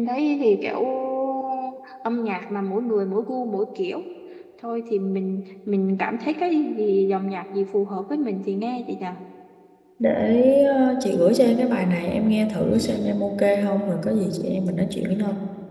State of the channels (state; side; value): identical; both; correlation 1.00